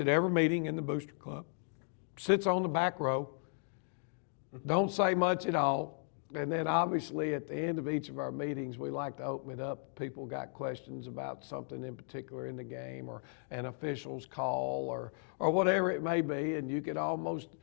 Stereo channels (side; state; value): right; silent; 54 dB below the other